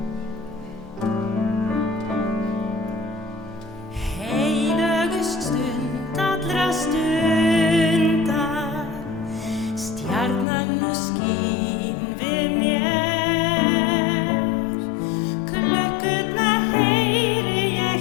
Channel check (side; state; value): right; drops out; at 10.5 s